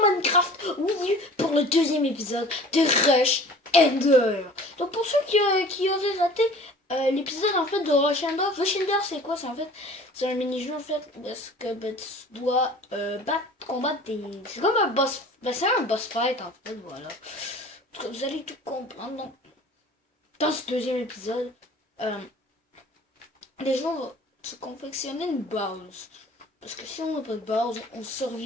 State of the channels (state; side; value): normal; both; correlation 0.45